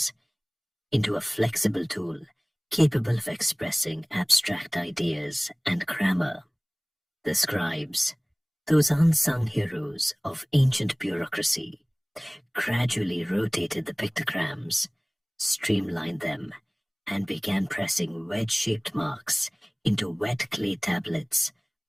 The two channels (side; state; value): both; identical; correlation 1.00